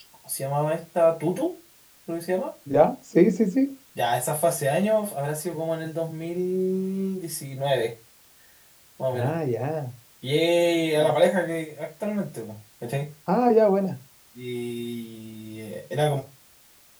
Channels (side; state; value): both; identical; correlation 1.00